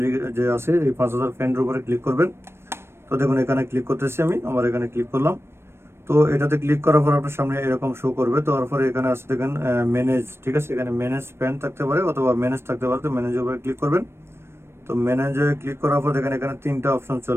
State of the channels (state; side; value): late; left; 0.12 ms